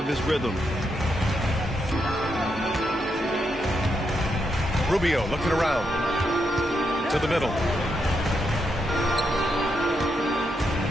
his rhythm. Rubio looking around. To the middle.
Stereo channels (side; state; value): both; normal; correlation 0.82